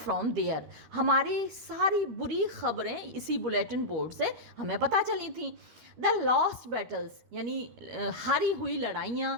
there, हमारी सारी बुरी खबरें इसी बुलेटिन बोर्ड से हमें पता चली थी। द लॉस्ट बैटल्स, यानी हारी हुई लड़ाइयाँ,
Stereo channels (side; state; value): left; late; 13 ms